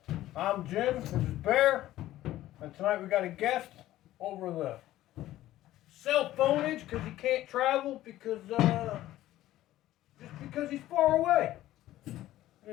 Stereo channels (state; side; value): quieter; right; 14.6 dB